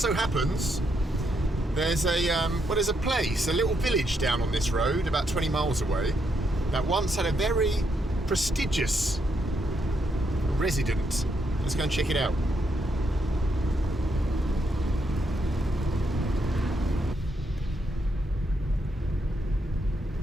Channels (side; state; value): both; normal; correlation 0.78